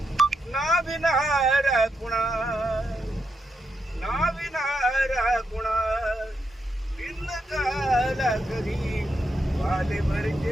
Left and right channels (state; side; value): normal; both; correlation 0.83